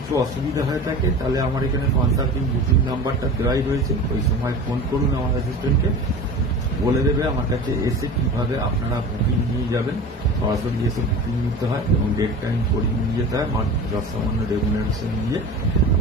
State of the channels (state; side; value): normal; both; correlation 0.35